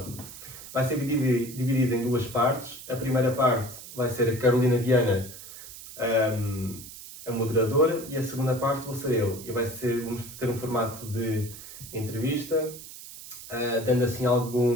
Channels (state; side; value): noise; right; hiss, 14 dB below the sound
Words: Vai ser dividido em duas partes. A primeira parte vai ser a Carolina Viana, a moderadora, e a segunda parte vou ser eu. E vamos ter um formato de entrevista, dando assim